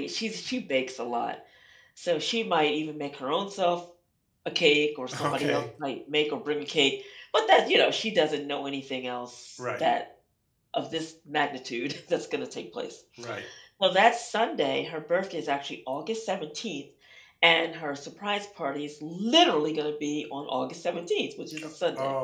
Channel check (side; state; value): both; identical; correlation 1.00